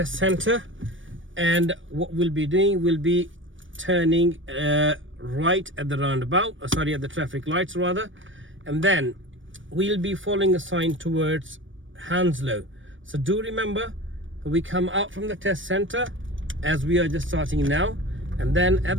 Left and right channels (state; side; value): late; left; 0.56 ms